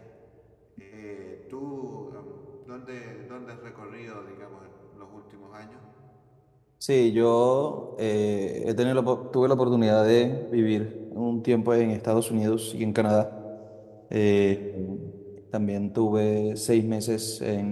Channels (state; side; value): identical; both; correlation 1.00